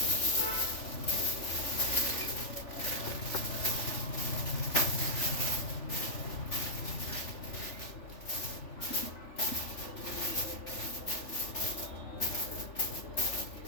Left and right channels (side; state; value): right; late; 3.4 ms